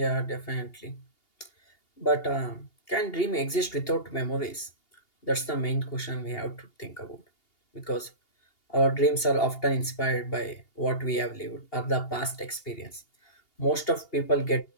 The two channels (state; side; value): late; right; 2.8 ms